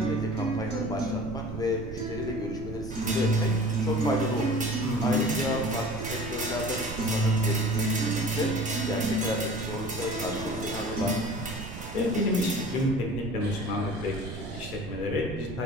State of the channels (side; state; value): right; noise; rumble, 9 dB below the sound